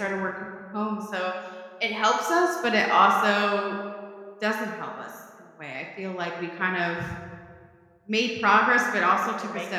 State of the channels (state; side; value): identical; both; correlation 1.00